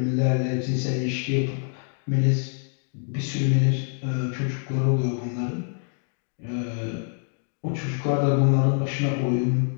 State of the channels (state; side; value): silent; right; 61 dB below the other